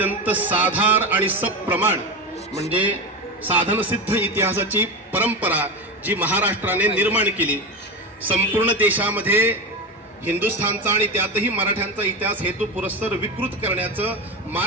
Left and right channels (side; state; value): both; normal; correlation 0.20